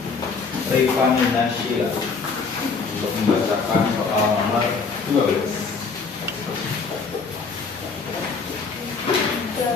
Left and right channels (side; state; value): right; quieter; 4.8 dB